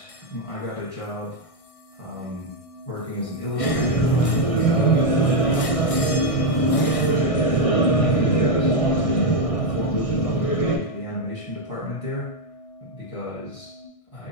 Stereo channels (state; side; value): late; right; 1.6 ms